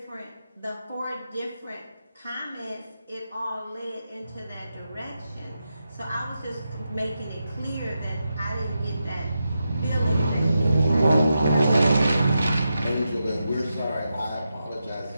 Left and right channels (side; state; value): both; inverted; correlation -0.88